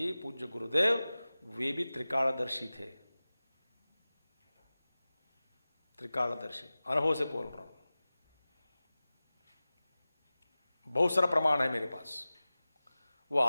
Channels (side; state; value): both; inverted; correlation -0.97